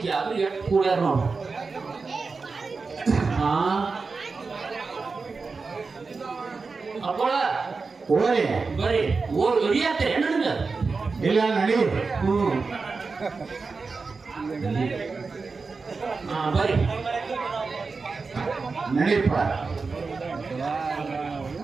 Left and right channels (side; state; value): left; quieter; 4.4 dB